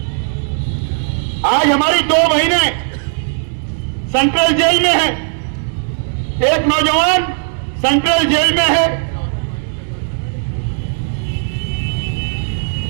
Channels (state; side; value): silent; left; 67 dB below the other